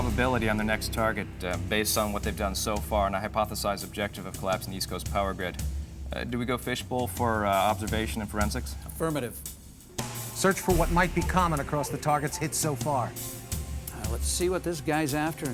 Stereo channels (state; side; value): identical; both; correlation 1.00